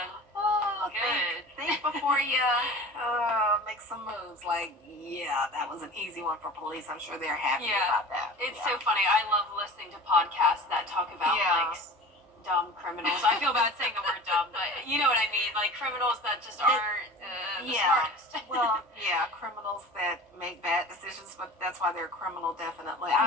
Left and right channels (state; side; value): normal; both; correlation 0.38